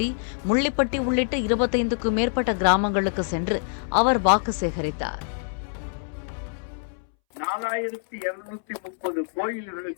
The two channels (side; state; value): right; silent; 61 dB below the other